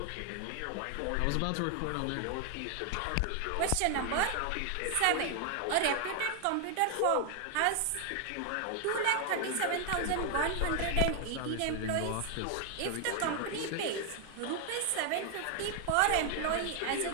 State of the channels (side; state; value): both; different; correlation 0.00